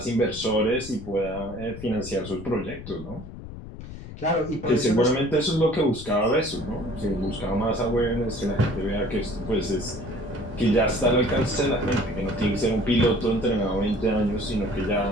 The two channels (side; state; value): left; noise; rumble, 12 dB below the sound